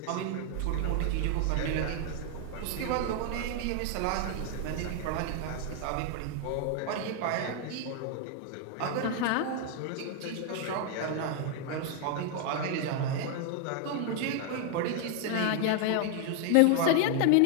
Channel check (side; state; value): both; different; correlation 0.00